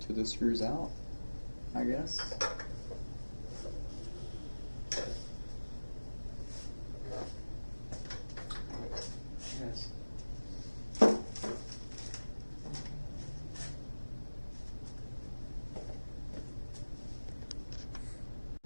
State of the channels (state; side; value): inverted; both; correlation -1.00